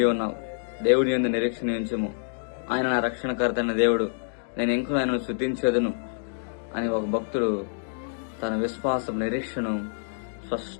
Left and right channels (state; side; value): silent; right; digital silence